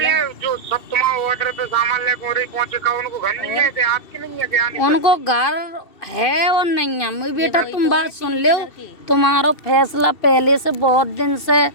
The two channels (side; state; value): right; late; 2.7 ms